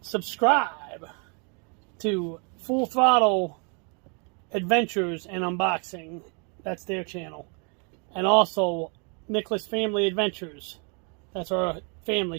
subscribe to Full Throttle Adventures and Unboxing. That's their channel. And also Nicholas Family Adventures. That's our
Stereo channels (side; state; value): left; quieter; 36.5 dB